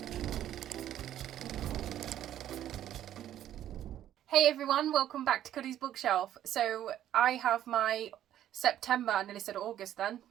Hey everyone, welcome back to Cuddy's Bookshelf. So I have my September, I nearly said August then.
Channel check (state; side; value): quieter; left; 11.7 dB